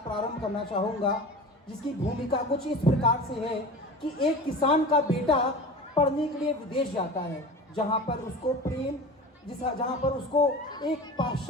प्रारंभ करना चाहूँगा, जिसकी भूमिका कुछ इस प्रकार से है कि एक किसान का बेटा पढ़ने के लिए विदेश जाता है, जहाँ पर उसको एक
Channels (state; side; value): normal; both; correlation 0.35